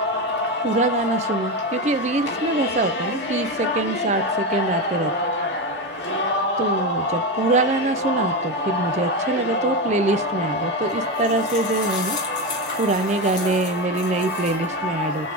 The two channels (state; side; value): normal; both; correlation 0.15